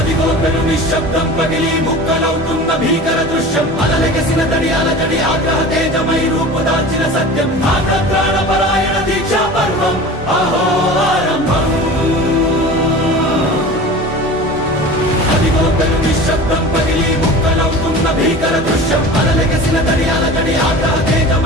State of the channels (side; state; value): both; normal; correlation 0.36